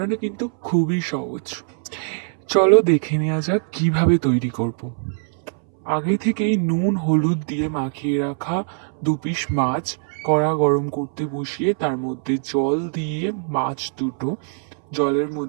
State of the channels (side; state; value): left; silent; 62 dB below the other